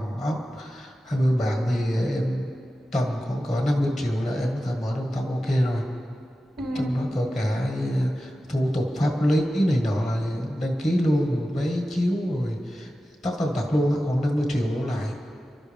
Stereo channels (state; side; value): normal; both; correlation 0.94